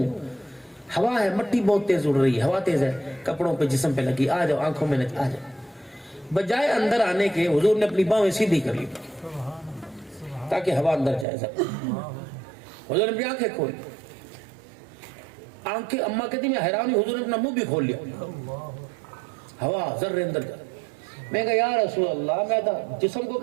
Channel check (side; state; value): left; drops out; at 11.2 s